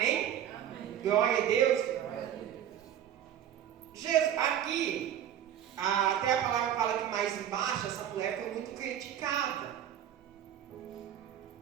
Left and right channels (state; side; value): quieter; left; 10.3 dB